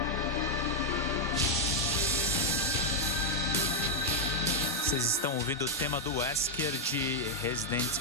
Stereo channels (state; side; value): normal; both; correlation -0.01